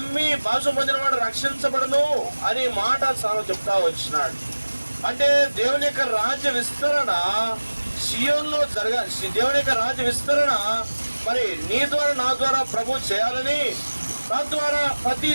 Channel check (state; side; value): inverted; both; correlation -1.00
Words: భాష పొందిన వాడు రక్షించబడను అని మాట చెప్తా వచ్చినాడు. అంటే దేవుని యొక్క రాజ్య విస్తరణ సియోన్లో దేవుని యొక్క రాజ్య విస్తరణ మరి నీ ద్వారా నా ద్వారా ప్రభు చేయాలని, తద్వారా ప్రతి